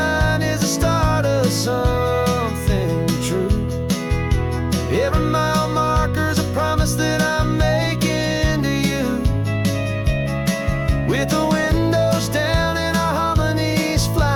is the start of something true. Every mile marker's a promise that I'm making to you. With the windows down and our harmonies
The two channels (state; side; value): identical; both; correlation 1.00